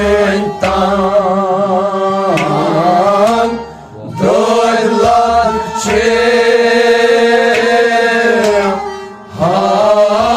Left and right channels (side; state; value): both; identical; correlation 1.00